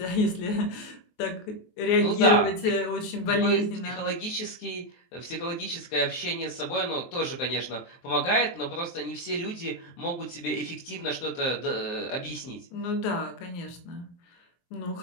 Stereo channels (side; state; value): right; late; 23 ms